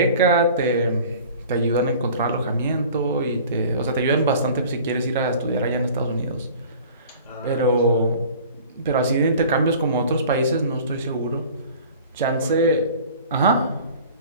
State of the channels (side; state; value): both; inverted; correlation -0.45